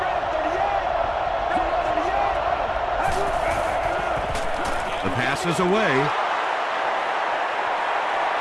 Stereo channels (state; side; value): identical; both; correlation 1.00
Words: The pass is away.